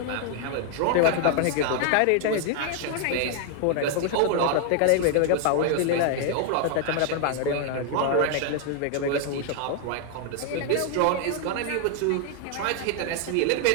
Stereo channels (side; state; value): both; different; correlation 0.00